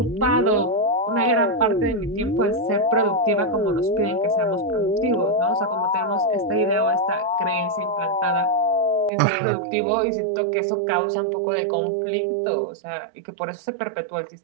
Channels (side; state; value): left; drops out; at 9.1 s